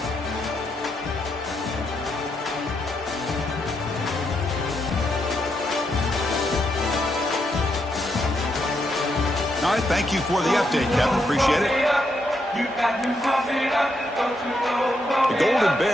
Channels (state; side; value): normal; both; correlation 0.79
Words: All right, thank you for the update, Kevin. Appreciate it. The Golden